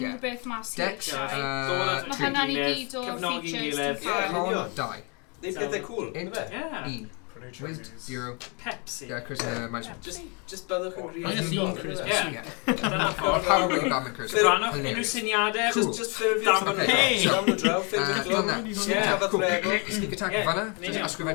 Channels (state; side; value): quieter; right; 33.5 dB